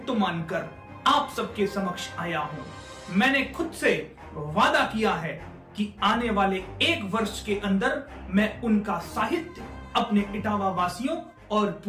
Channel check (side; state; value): both; identical; correlation 1.00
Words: मानकर आप सबके समक्ष आया हूँ। मैंने खुद से वादा किया है कि आने वाले 1 वर्ष के अंदर मैं उनका साहित्य अपने इटावा वासियों और